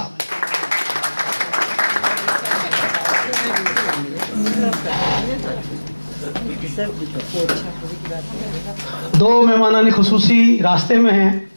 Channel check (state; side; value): inverted; both; correlation -1.00